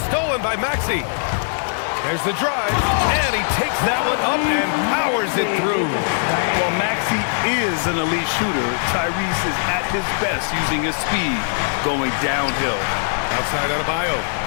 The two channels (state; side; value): silent; right; 65 dB below the other